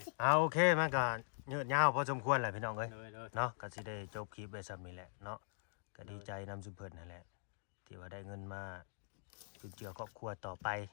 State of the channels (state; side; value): silent; right; digital silence